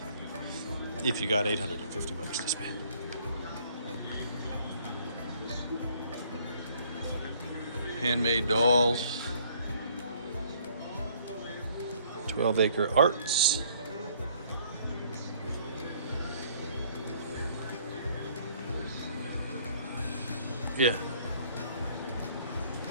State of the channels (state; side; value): inverted; both; correlation -0.60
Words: If you got $850 to spend. Handmade dolls. 12-acre arts. Yeah.